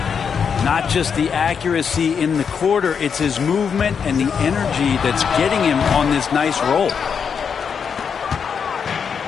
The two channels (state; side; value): quieter; right; 6.7 dB